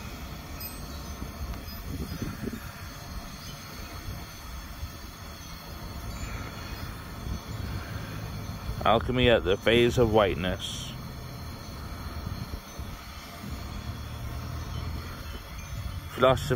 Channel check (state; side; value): identical; both; correlation 1.00